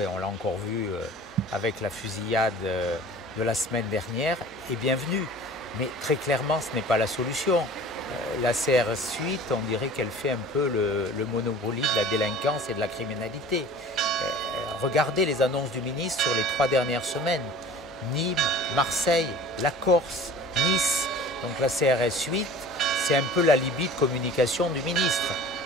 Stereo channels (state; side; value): normal; both; correlation 0.44